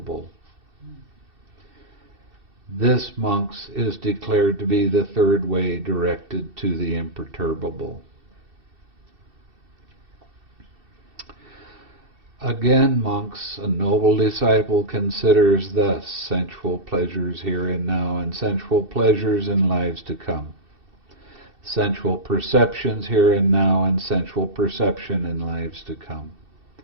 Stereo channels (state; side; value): late; left; 2.7 ms